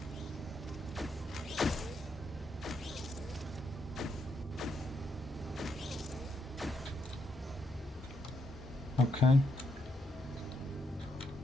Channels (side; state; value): both; normal; correlation 0.78